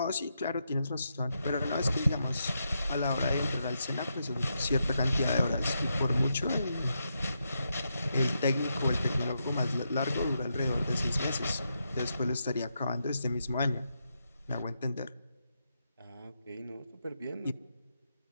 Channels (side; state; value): both; inverted; correlation -0.84